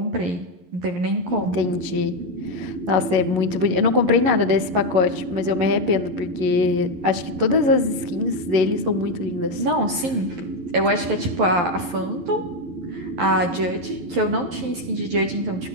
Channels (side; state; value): left; late; 11 ms